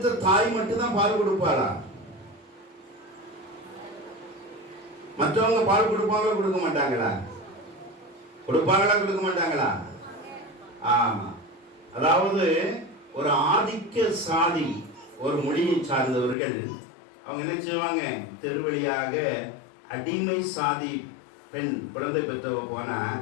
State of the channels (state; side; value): drops out; right; at 16.4 s